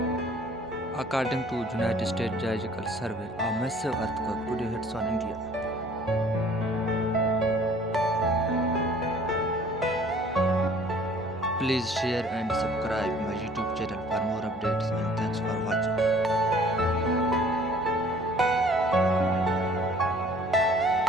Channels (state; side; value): normal; both; correlation 0.54